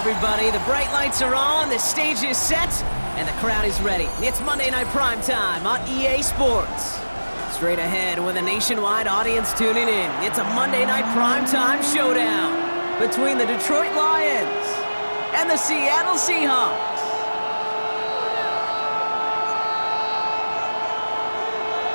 The bright lights are on, the stage is set, and the crowd is ready. It's Monday Night Primetime on EA Sports. Straight ahead with a nationwide audience tuning in, it's a Monday Night Primetime showdown between the Detroit Lions and the Seattle Seahawks.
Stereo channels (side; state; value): both; inverted; correlation -1.00